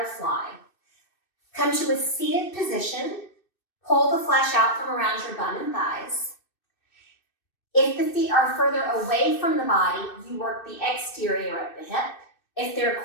Come to a seated position. Pull the flesh out from around your bum and thighs. If the feet are further away from the body, you work the exterior of the hip. If they're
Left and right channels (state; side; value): late; right; 2.6 ms